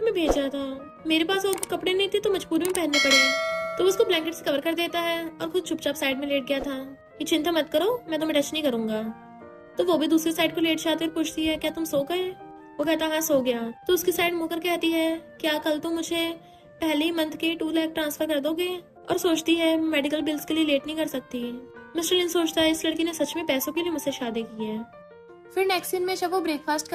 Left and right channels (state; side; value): identical; both; correlation 1.00